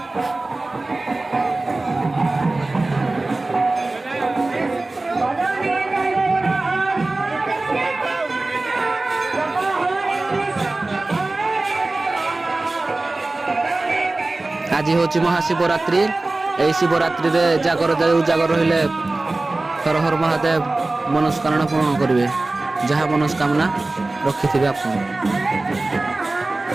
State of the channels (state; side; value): quieter; left; 3.1 dB